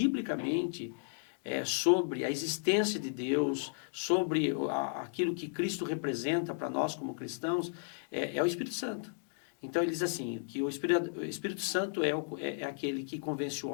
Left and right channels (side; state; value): right; silent; digital silence